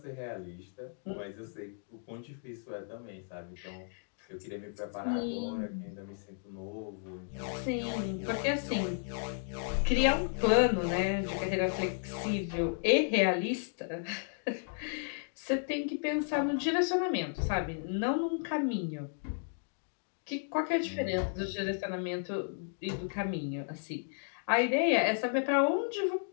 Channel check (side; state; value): right; silent; digital silence